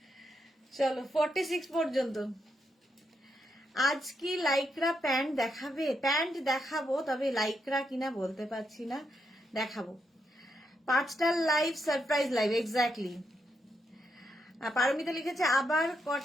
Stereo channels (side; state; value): both; normal; correlation 0.81